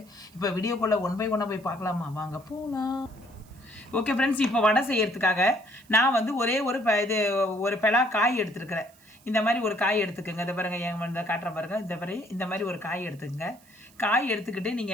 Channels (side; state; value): right; noise; hiss, 28 dB below the sound